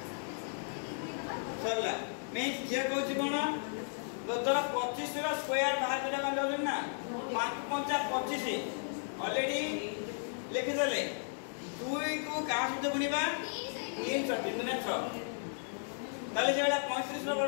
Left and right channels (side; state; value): right; silent; digital silence